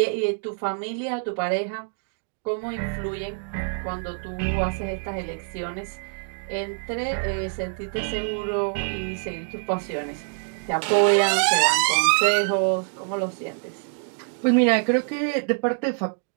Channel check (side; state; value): left; silent; 62 dB below the other